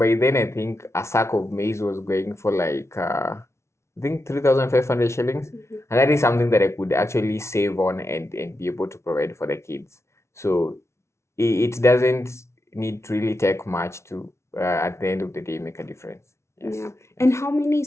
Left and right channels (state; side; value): late; right; 0.13 ms